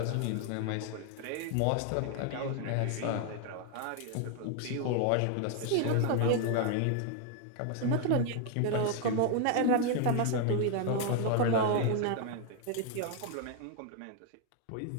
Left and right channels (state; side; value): different; both; correlation 0.00